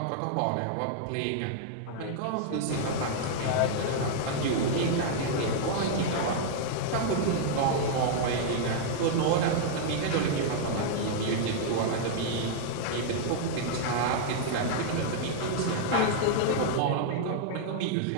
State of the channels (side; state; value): both; different; correlation -0.01